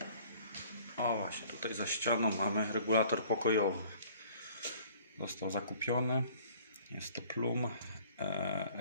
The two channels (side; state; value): both; inverted; correlation -0.54